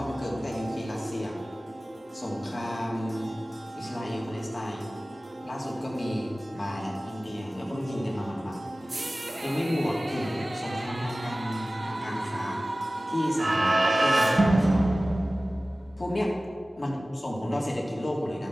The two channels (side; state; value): both; normal; correlation 0.97